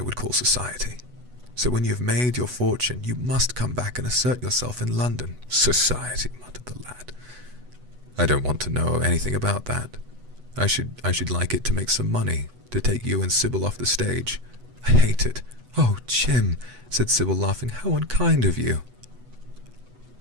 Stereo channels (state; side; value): late; left; 8.1 ms